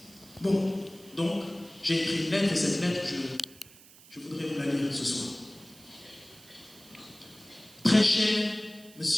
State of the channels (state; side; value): noise; right; hiss, 22 dB below the sound